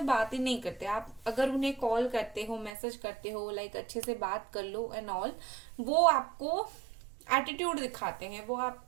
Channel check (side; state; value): left; drops out; at 2.7 s